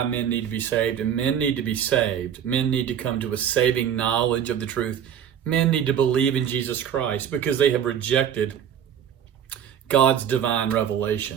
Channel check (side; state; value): left; quieter; 9.0 dB